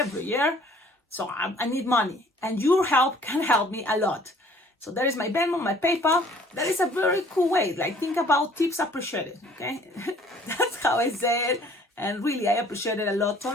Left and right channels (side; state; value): both; normal; correlation 0.56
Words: year, so I need money. And your help can help me a lot. So that is my Venmo, my PayPal. That is a very cool way. Like, think about tips appreciated, okay? That's how I say it. And really, I appreciate it a lot.